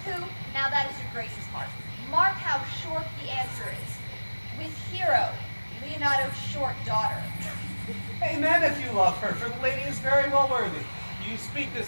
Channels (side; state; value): both; inverted; correlation -1.00